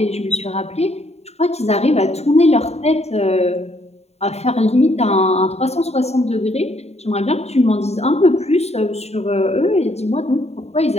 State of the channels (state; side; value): late; right; 0.31 ms